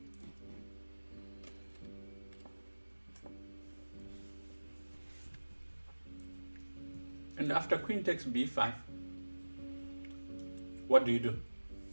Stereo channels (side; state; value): both; inverted; correlation -1.00